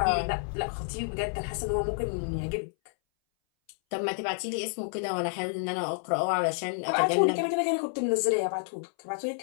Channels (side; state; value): right; silent; 58 dB below the other